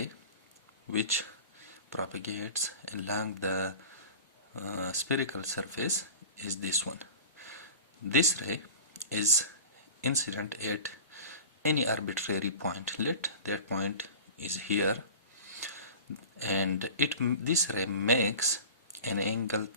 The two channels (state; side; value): inverted; both; correlation -0.36